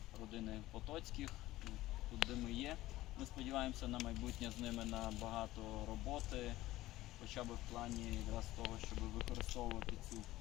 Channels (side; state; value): right; quieter; 16.6 dB